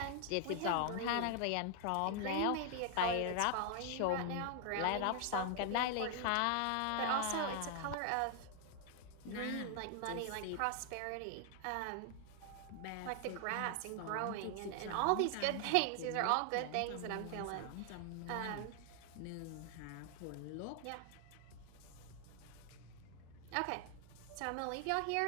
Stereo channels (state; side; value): different; both; correlation 0.00